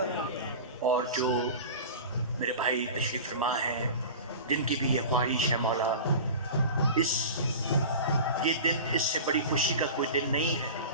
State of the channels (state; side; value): inverted; both; correlation -0.34